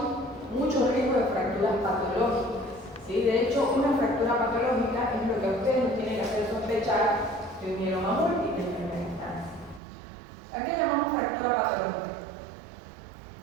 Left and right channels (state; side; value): drops out; left; at 9.8 s